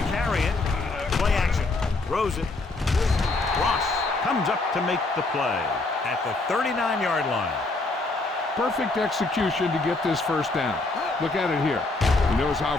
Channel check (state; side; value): quieter; right; 3.3 dB